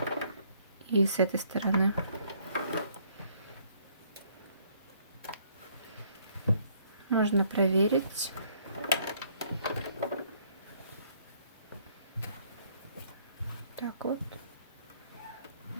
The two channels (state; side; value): inverted; both; correlation -0.64